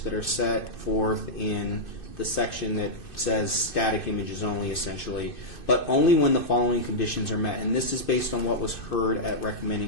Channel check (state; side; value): late; right; 2.6 ms